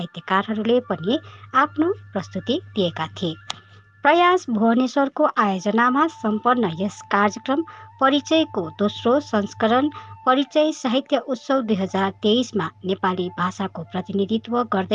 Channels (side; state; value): both; identical; correlation 1.00